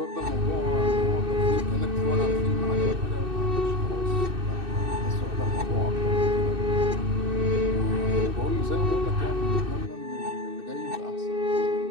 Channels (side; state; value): left; late; 2.6 ms